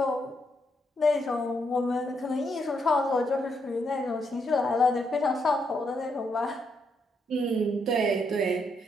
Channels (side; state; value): both; normal; correlation 0.77